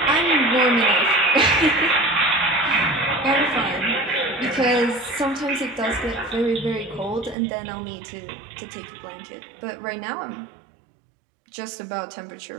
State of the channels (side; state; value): left; drops out; at 7.4 s